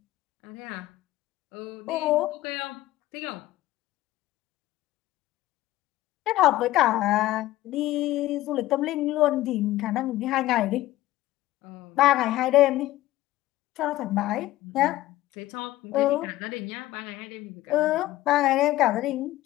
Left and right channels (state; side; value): quieter; right; 16.0 dB